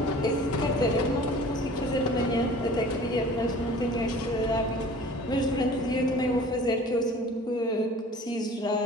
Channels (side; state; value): both; normal; correlation 0.45